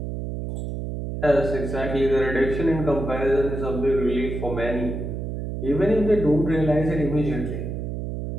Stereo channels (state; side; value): noise; right; hum, 5 dB below the sound